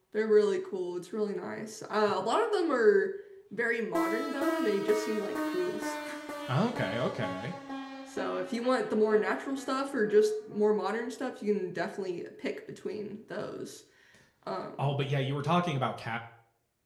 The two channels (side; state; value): both; identical; correlation 1.00